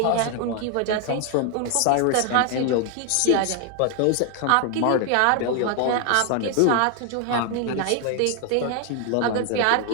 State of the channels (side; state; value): both; different; correlation 0.00